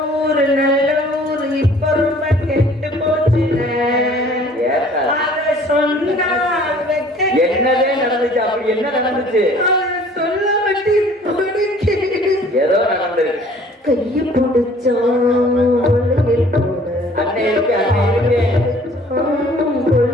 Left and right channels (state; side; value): normal; both; correlation 0.53